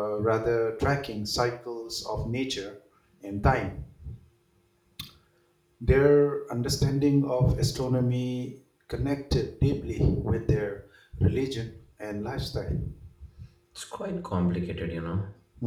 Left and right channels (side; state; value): both; identical; correlation 1.00